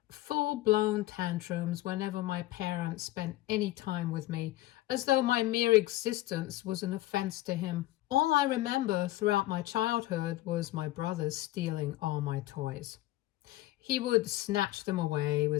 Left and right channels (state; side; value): quieter; right; 16.4 dB